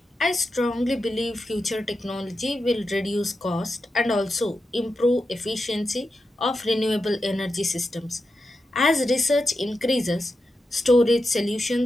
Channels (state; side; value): normal; both; correlation 0.89